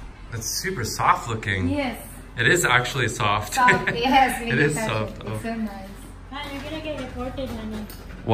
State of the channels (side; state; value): both; identical; correlation 1.00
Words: It's super soft looking. Yes. It is actually soft. Soft. Yes. It is soft. It's so nice. Man, you're gonna get reported, honey.